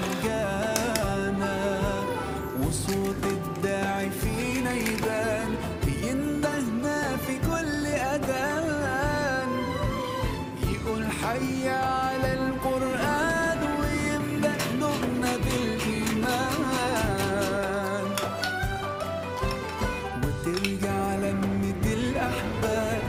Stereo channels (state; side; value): identical; both; correlation 1.00